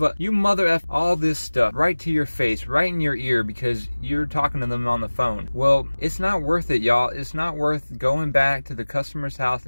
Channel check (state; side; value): inverted; both; correlation -1.00